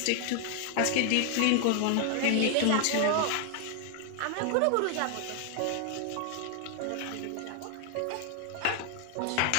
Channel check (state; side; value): different; both; correlation 0.00